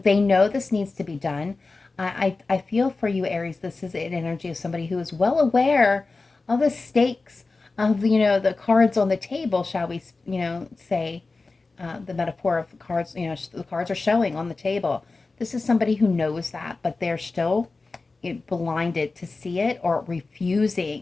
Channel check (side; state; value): right; quieter; 3.7 dB